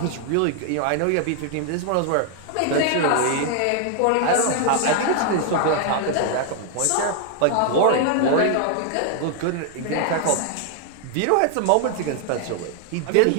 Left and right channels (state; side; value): different; both; correlation 0.00